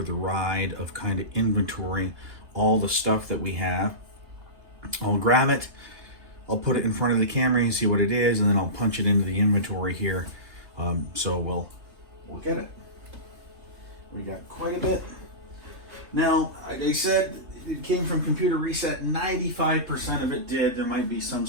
the ride of kind of inventorying all the stuff that we have? I'll grab it, I'll put it in front of the camera and see what it is, and then I'll punch it into the inventory here. So we'll get it. We got quite a bit. Now, like I said, it came from Computer Reset. 95% of it did. There might be some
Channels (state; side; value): late; left; 3.3 ms